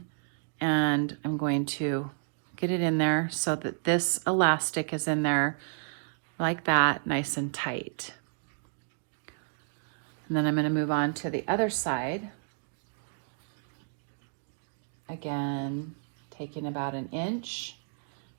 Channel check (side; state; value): left; silent; digital silence